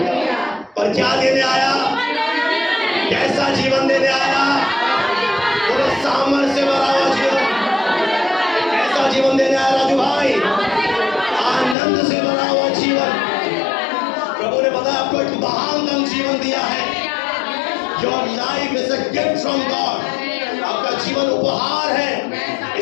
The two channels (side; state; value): right; drops out; at 11.8 s